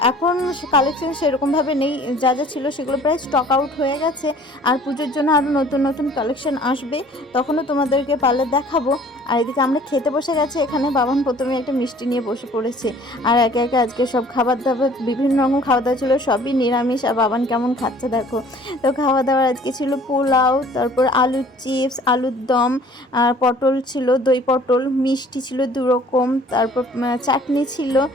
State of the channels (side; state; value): both; normal; correlation 0.52